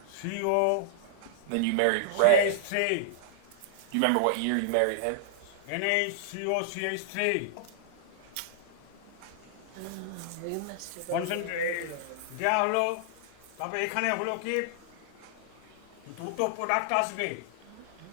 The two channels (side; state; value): both; different; correlation -0.01